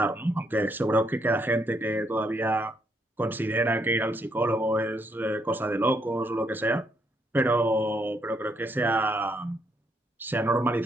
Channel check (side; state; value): both; normal; correlation 0.74